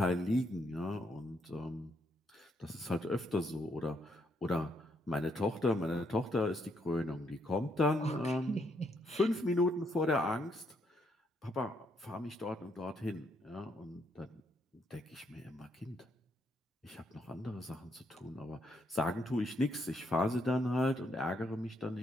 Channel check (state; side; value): normal; both; correlation 0.74